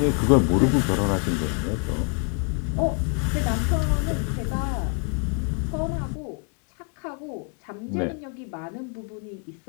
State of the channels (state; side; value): quieter; right; 38.6 dB